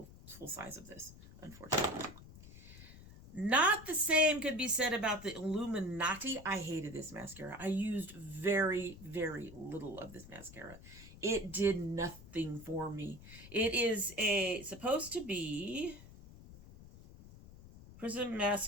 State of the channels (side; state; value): left; noise; rumble, 17 dB below the sound